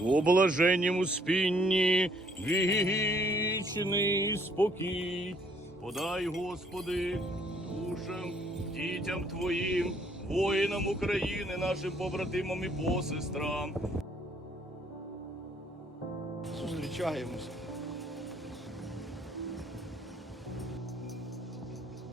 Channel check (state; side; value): normal; both; correlation 0.64